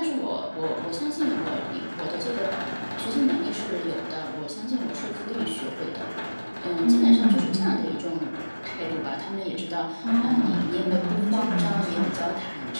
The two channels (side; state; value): both; inverted; correlation -1.00